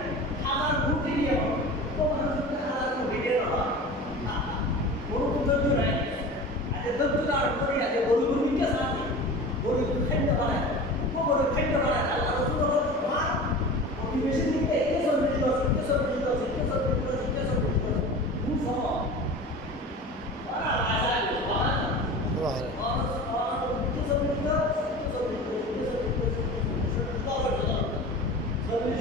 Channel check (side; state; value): both; normal; correlation 0.35